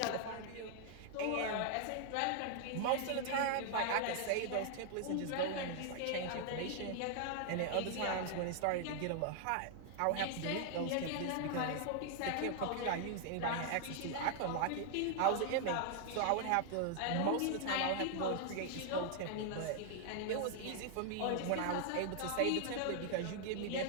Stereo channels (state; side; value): different; both; correlation 0.00